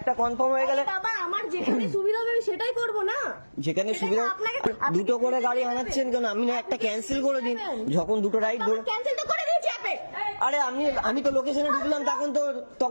কনফার্ম হয়ে গেলে আমার যেখানে সুবিধা হবে সেটাই করবো না। যেখানে সুবিধা দুটো করে গাড়ি আনাচ্ছেন কেন? আমি না একটা ক্যান্সেল করে দিন, যখন দুটো রাইড ধরে। আরে আমি তো লোকেশনে ঢুকলাম,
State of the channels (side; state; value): both; inverted; correlation -1.00